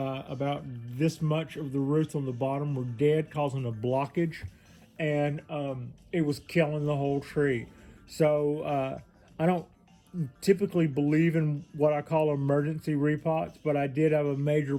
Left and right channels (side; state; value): both; identical; correlation 1.00